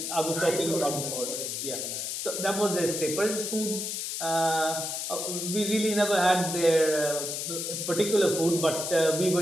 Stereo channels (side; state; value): left; noise; hiss, 3 dB below the sound